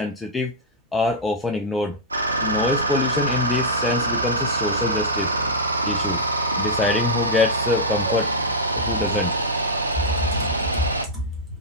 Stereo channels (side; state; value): both; normal; correlation -0.10